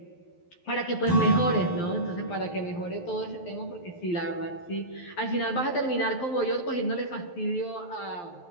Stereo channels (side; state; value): right; late; 12 ms